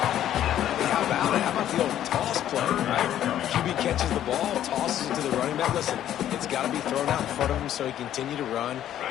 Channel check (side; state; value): right; quieter; 11.5 dB